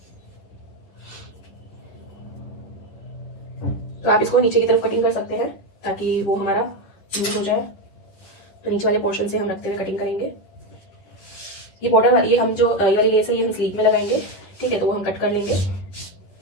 तो आप इसको नीचे की तरफ कटिंग कर सकते हैं ताकि वो हमारा स्मूथ हो जाए। तो नीचे वाले पोर्शन से हम रखते हुए कटिंग करेंगे। ये बॉर्डर, ये हम जो ये वाली लेस है, ये हम स्लीव में लगाएंगे। ठीक है, तो वो हम कट कर लेंगे।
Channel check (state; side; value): late; right; 11 ms